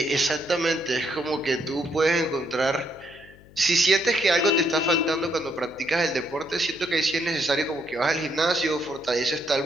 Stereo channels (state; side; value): noise; left; hum, 24 dB below the sound